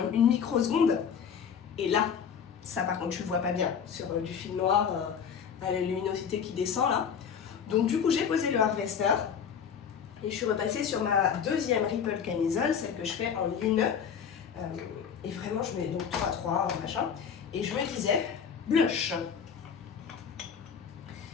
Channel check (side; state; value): right; quieter; 7.3 dB